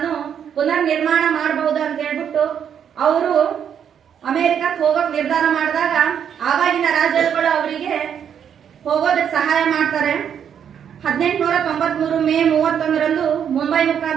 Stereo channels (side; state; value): left; quieter; 8.4 dB